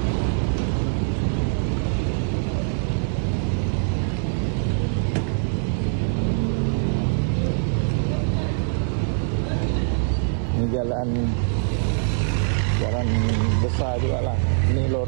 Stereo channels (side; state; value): left; silent; 63 dB below the other